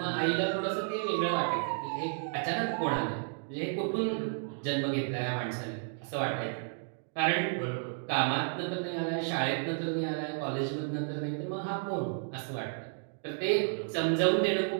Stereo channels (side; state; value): left; silent; 56 dB below the other